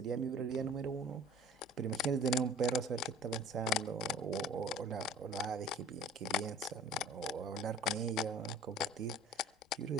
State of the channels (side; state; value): both; normal; correlation 0.46